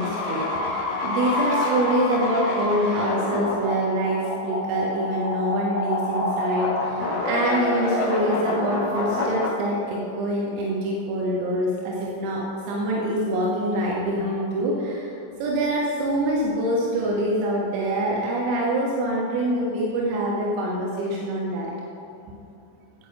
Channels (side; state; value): left; late; 25 ms